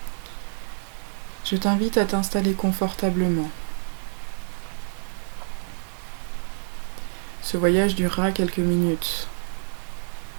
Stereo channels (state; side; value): silent; left; 60 dB below the other